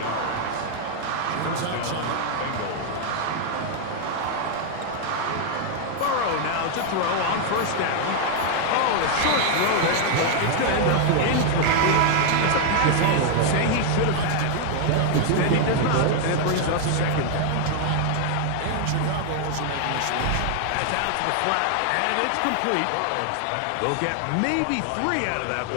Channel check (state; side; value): different; both; correlation 0.00